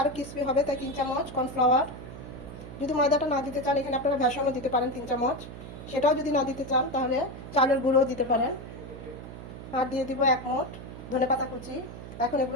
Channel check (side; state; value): right; noise; hum, 12 dB below the sound